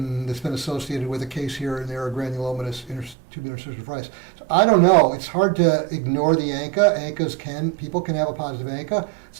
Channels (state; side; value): drops out; left; at 3.2 s